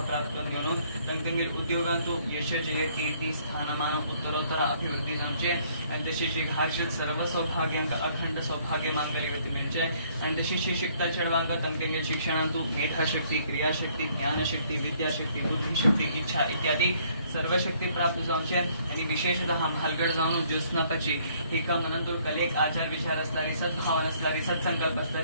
प्राप्त न्यूनो तंगेल उद्योगांतो यश जय कीर्ती स्थानमान उत्तरोत्तर अभिवृद्धी जाणचे आणि तशीची हर्षित सर्व सौभाग्यांक अखंड सौभाग्य मांगल्यवती मिळचे आणि तशीची शिकता चढवांक तंगेल शिक्षणांतू मेधाशक्ती क्रियाशक्ती ज्ञानशक्ती विद्याशक्ती बुद्धिशक्ती इच्छा इत्यादी सर्व शक्ती प्राप्त जाऊचे आणि विशेषतः भालगड जाऊन ज्योत्स्नापाची हे का मनातून कलेक आचार विचार असणारी सद्भावना असणारी सत्संकल्प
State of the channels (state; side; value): inverted; both; correlation -0.63